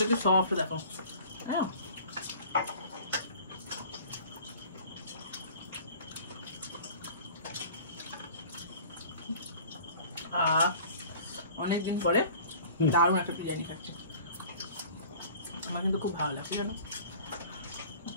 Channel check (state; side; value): inverted; both; correlation -0.45